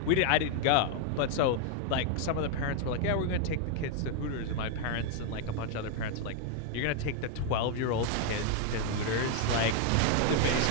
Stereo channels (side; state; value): both; different; correlation 0.00